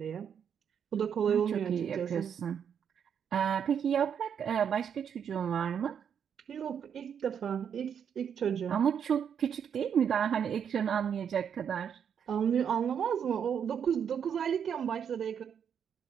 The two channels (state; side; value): quieter; left; 7.9 dB